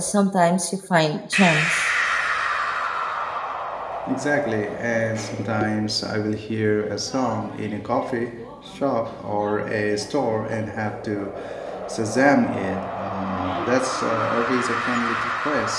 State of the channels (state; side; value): identical; both; correlation 1.00